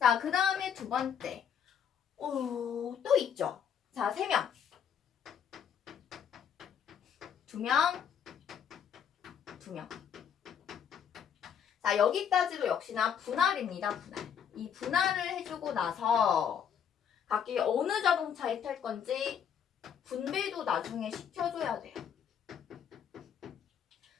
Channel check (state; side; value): quieter; right; 8.1 dB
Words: 그 다음에 두 번째 또 있죠. 자, 3명 2명 2명. 자, 여기까지도 역시나 분할입니다. 분할. 이 분할을 해주고 나서 각기 어느 자동차에 탈 건지 분배도 나중에 시켜줘야 돼요.